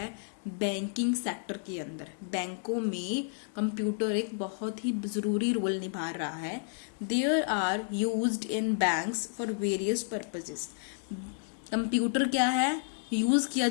बैंकिंग सेक्टर के अंदर. बैंकों में कंप्यूटर एक बहुत ही ज़रूरी रोल निभा रहा है. There are used in banks for various purposes. Computer क्या है? यूज़ किया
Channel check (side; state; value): right; silent; digital silence